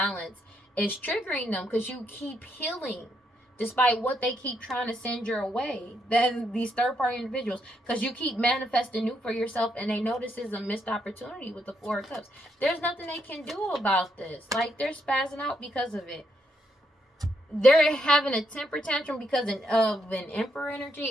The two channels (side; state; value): both; normal; correlation 0.77